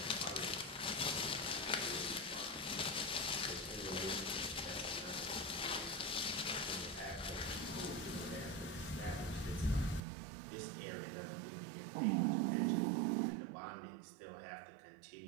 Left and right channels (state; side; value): drops out; left; at 10.0 s